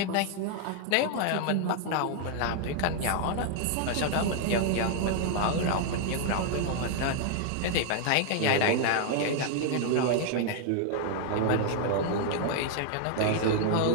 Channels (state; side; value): different; both; correlation 0.00